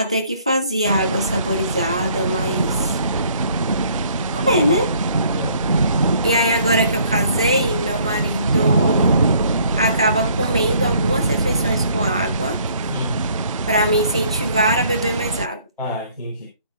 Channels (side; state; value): both; inverted; correlation -0.61